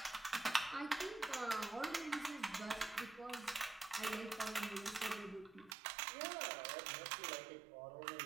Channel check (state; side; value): drops out; left; at 5.8 s